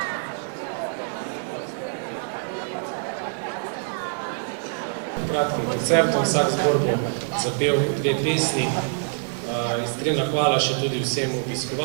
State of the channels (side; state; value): left; silent; digital silence